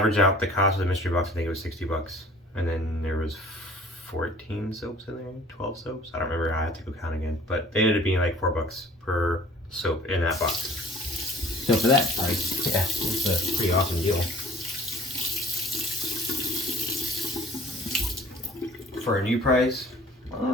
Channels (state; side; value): normal; both; correlation 0.51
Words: out the cost of the mystery box. I think it was 60 bucks. And then there was 14 soaps in there, 12 soaps. I don't remember, I have to go count again. But they ended up being like $4 per soap in that box. So for that price, yeah, it's a pretty awesome deal. For a new price,